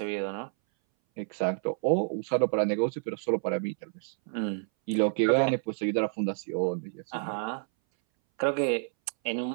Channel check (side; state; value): left; silent; 59 dB below the other